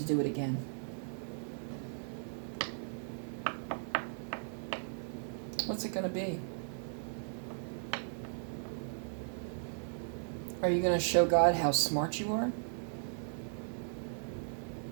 do it again? What's it going to be? Are you going to show God how smart you are?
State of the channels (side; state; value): left; silent; 53 dB below the other